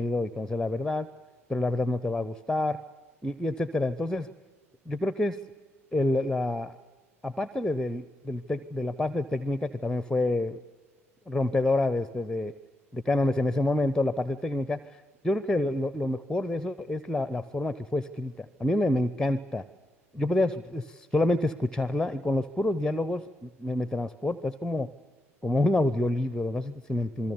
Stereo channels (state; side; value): normal; both; correlation 0.87